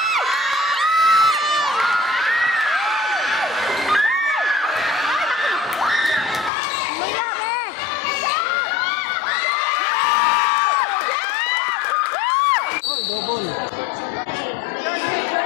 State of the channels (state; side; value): drops out; right; at 6.5 s